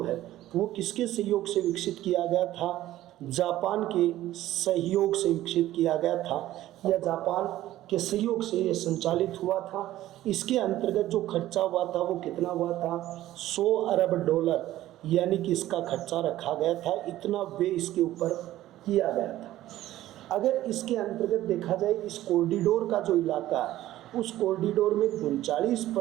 है वो किसके सहयोग से विकसित किया गया था, जापान के सहयोग से विकसित किया गया था, या जापान के सहयोग से ये संचालित हुआ था। इसके अंतर्गत जो खर्चा हुआ था वो कितना हुआ था, 100 अरब डॉलर, यानी कि इसका खर्चा रखा गया था, इतना व्यय इसके ऊपर किया गया था। अगर इसके अंतर्गत देखा जाए, इस कॉरिडोर का जो इलाका है उस कॉरिडोर में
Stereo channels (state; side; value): quieter; left; 14.5 dB